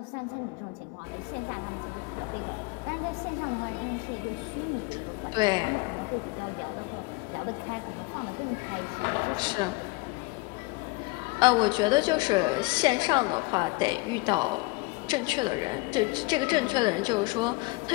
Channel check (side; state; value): right; quieter; 24.5 dB